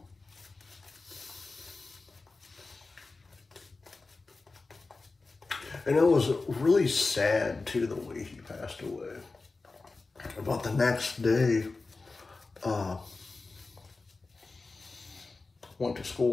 And it was really sad, too, the way he passed away. About the next day, went to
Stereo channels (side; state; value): right; quieter; 3.8 dB